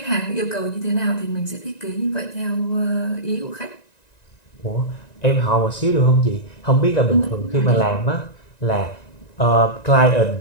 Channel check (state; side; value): late; right; 1.9 ms